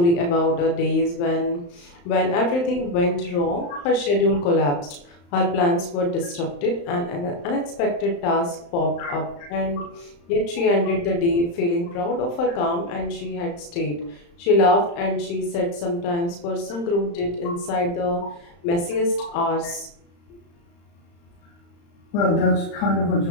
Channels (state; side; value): late; right; 35 ms